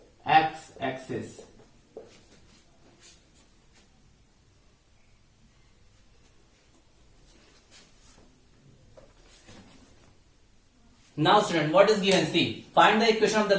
x-axis. Now student, what is given? See, find the equation of the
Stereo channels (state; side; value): identical; both; correlation 1.00